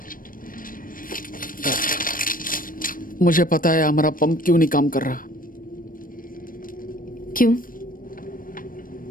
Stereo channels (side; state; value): right; late; 0.40 ms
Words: मुझे पता है हमारा पंप क्यों नहीं काम कर रहा। क्यों?